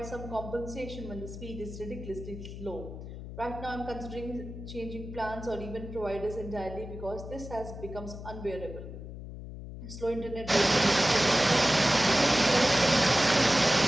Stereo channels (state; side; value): noise; left; hum, 11 dB below the sound